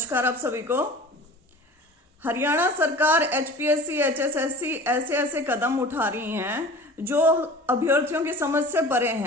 आप सभी को। हरियाणा सरकार एचपीएससी, एचएसएससी ऐसे ऐसे कदम उठा रही हैं जो अभ्यर्थियों की समझ से परे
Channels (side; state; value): both; normal; correlation 0.40